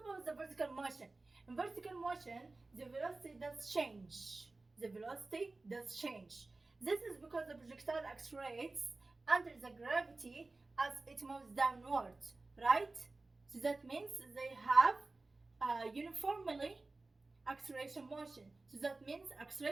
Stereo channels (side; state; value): left; quieter; 3.3 dB